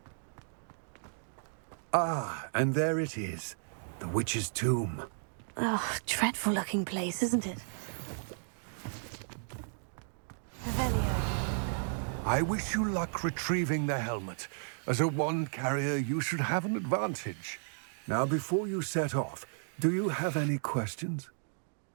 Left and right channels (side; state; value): left; silent; digital silence